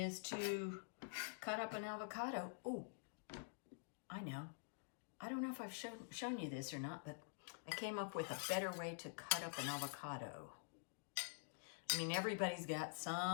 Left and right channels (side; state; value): right; silent; digital silence